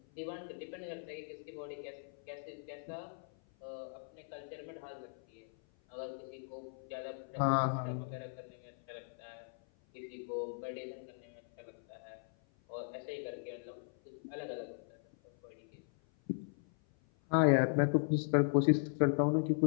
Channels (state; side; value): silent; right; 52 dB below the other